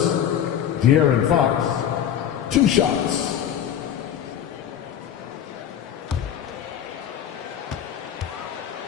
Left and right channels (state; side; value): quieter; right; 9.6 dB